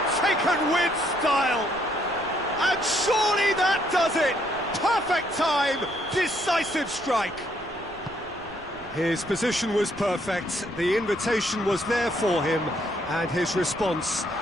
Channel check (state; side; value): noise; right; rumble, 22 dB below the sound